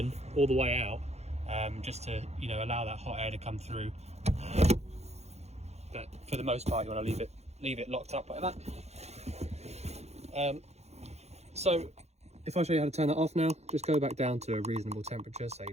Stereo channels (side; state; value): left; late; 0.31 ms